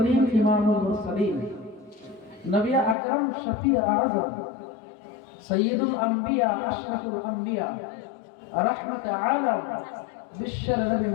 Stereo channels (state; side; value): drops out; right; at 3.0 s